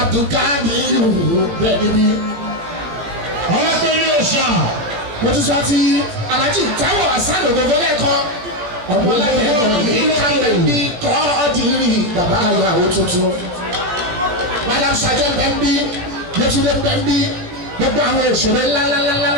bẹ́ẹ̀ níbí. Alápinni Òòṣà. Mo ti sọ ti Alhaji Taiwo Hassan Ogogo lẹ́ẹ̀kan ọmọ aláìlẹ́gbẹ̀ẹ́ ìkàlẹ̀ bí kọ́ ọ́dìrì bàbá ìyàwó tuntun. Madam Sajẹ́ bẹ́ẹ̀ bí. Yétúndé bẹ́ńbí gbogbo àwọn òṣèré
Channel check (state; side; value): late; left; 17 ms